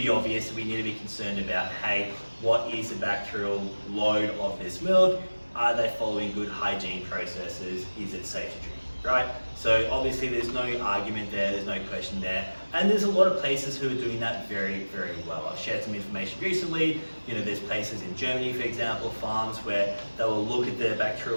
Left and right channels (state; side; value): inverted; both; correlation -1.00